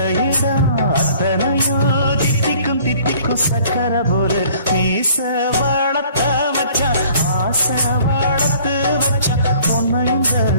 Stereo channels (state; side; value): inverted; both; correlation -0.54